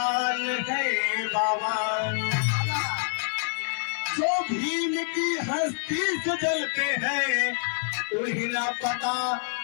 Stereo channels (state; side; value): silent; right; digital silence